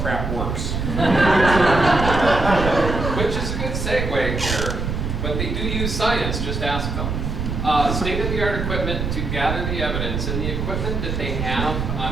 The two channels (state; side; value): noise; right; rumble, 3 dB below the sound